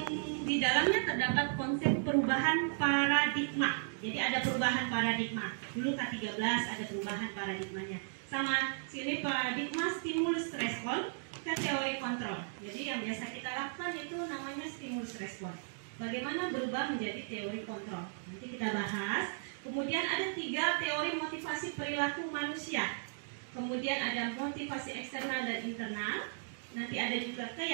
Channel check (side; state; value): left; silent; digital silence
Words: di dalamnya terdapat konsep perubahan paradigma. Jadi ada perubahan paradigma. Dulu K13 ada perubahan paradigmanya. Sama sini paradigma stimulus respon ke teori kontrol. Jadi yang biasa kita lakukan itu namanya stimulus respon. Bagaimana berubah menjadi teori kontrol. Nanti kita bahas. Kemudian ada 3 teori motivasi perilaku manusia. Kemudian ada motivasi eksternal dan internal. Nanti ada juga